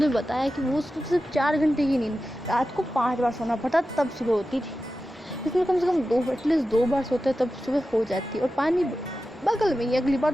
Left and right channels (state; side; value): normal; both; correlation 0.93